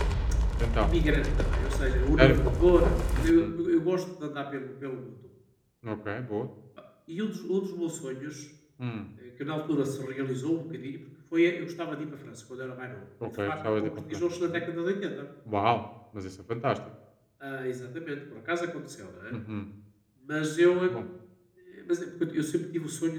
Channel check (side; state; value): both; identical; correlation 1.00